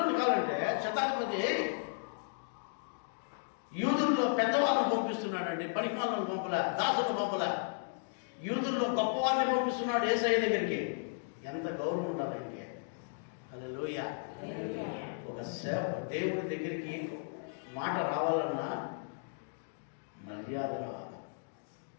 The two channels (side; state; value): right; silent; digital silence